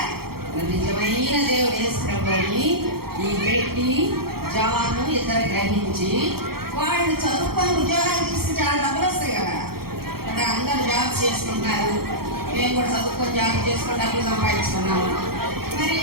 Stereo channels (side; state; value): left; late; 0.94 ms